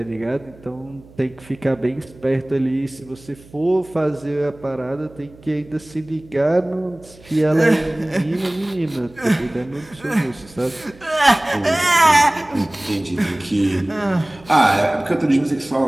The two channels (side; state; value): right; noise; hum, 23 dB below the sound